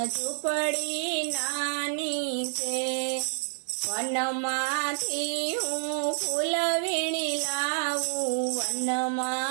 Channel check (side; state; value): left; silent; 59 dB below the other